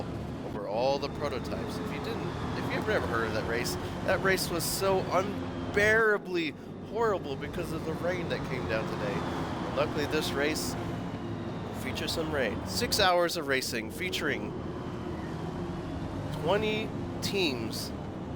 over all the prototypes. If you've never heard of that race was so unbearably horrible because of the rain that came down today. And luckily this race features some rain. 6 hours of racing featuring 20 teams,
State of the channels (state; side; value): identical; both; correlation 1.00